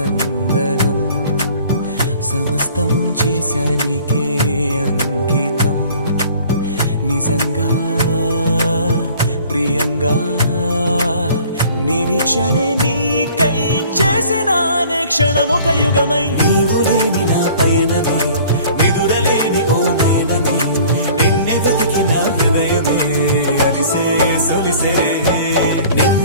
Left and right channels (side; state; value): both; inverted; correlation -0.50